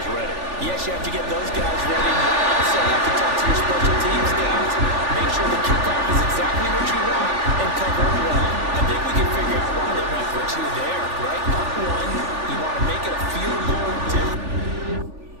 ready. Yes, you have to get those guys ready. You also have to talk to your special teams guys. Make sure the kickoff is exactly what you want and cover it well. I think we can figure out why they went for 2 there, right? Up 1, you want to make it a field goal difference.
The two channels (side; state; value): left; late; 3.4 ms